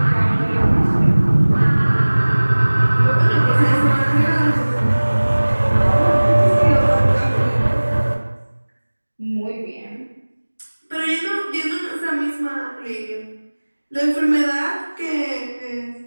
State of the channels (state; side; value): inverted; both; correlation -1.00